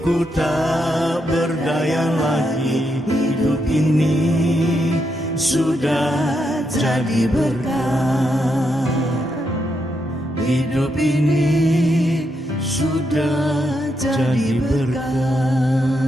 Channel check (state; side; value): normal; both; correlation 0.81